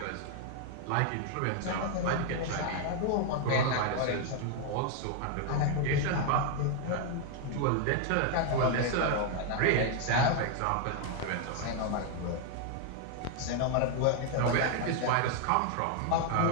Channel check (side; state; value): both; different; correlation 0.00